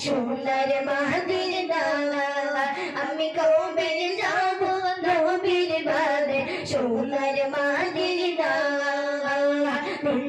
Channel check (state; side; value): identical; both; correlation 1.00